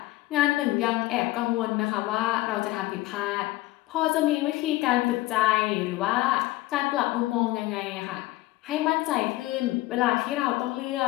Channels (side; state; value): right; quieter; 18.1 dB